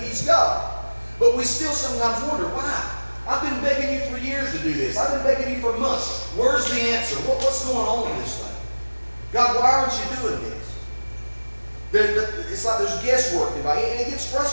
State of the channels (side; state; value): both; inverted; correlation -1.00